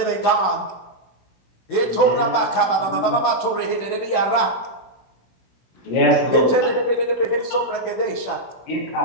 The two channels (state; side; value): late; right; 16 ms